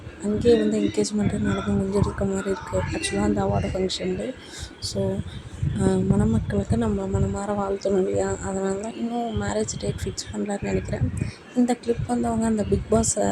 அங்கேயே வந்து என்கேஜ்மெண்ட்டு நடந்து முடிஞ்சிருக்க மாதிரி இருக்குது ஆக்சுவலாக அந்த அவார்டு ஃபங்க்ஷன்லேயே. ஸோ மணமக்களுக்கு நம்ம மனமார வாழ்த்தணும் இல்லையா, அதனால தான் இன்னும் மேரேஜ் டேட் ஃபிக்ஸ் பண்ணலான்னு நினைக்கிறேன். இந்த கிளிப் வந்து அவங்க அந்த பிக் பாஸ்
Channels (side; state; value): both; identical; correlation 1.00